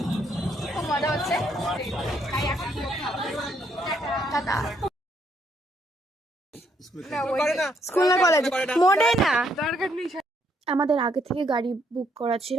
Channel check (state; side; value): normal; both; correlation 0.72